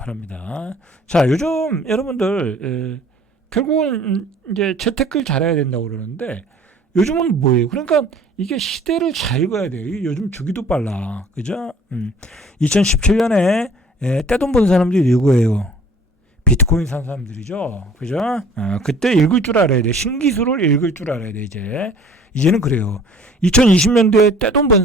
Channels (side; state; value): both; normal; correlation 0.51